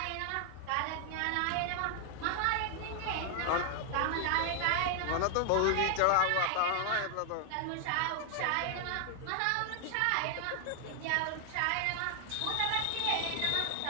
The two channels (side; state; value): both; different; correlation 0.00